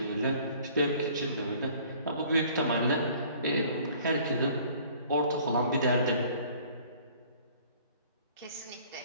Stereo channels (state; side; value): inverted; both; correlation -0.53